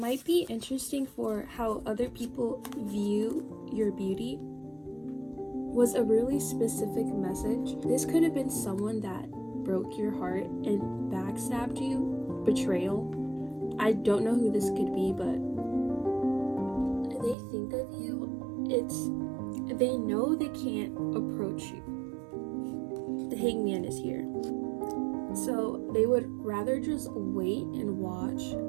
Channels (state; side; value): drops out; left; at 17.4 s